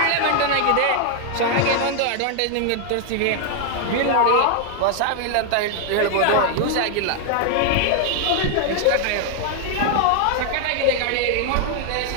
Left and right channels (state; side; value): different; both; correlation 0.00